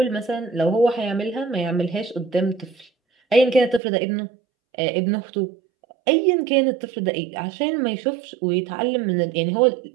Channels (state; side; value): drops out; left; at 3.8 s